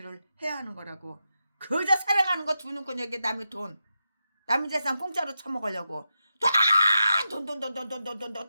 해야 하는 거라고. 그저 사랑하는 거 두 눈꺼 여기 남의 돈, 남의 재산 공짜로 처먹으려고 돈,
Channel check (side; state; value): both; inverted; correlation -0.88